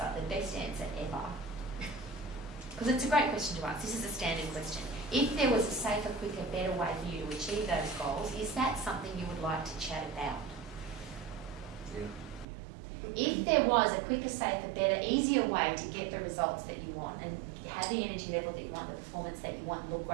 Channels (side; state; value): left; drops out; at 12.5 s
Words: the best answer ever. Because it's a great question to ask. This is a standard question. If there was a safer, quicker, better way for you to achieve those goals, is that something you would like to chat about? Yeah. If there was a quicker, safer, better, easier way to get the results that you want and have the energy level that you want, the performance that you want, and look